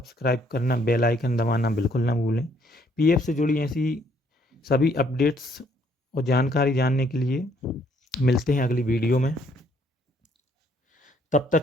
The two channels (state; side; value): normal; both; correlation 0.67